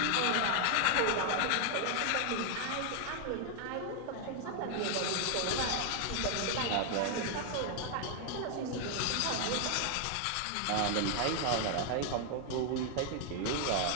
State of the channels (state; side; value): different; both; correlation 0.00